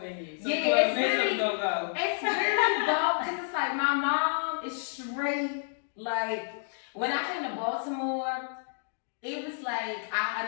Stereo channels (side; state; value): right; silent; digital silence